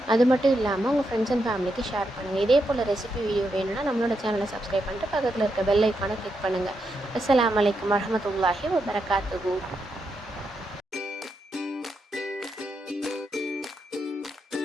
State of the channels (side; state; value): both; normal; correlation 0.83